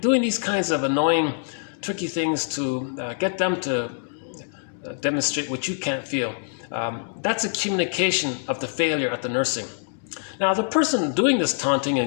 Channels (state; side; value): silent; right; digital silence